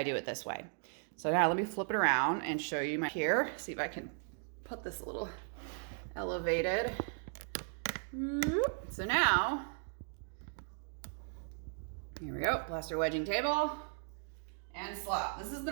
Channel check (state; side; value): silent; left; 53 dB below the other